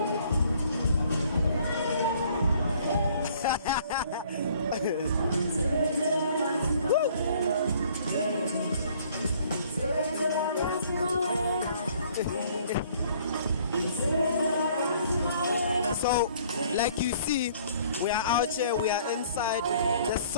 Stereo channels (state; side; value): inverted; both; correlation -0.58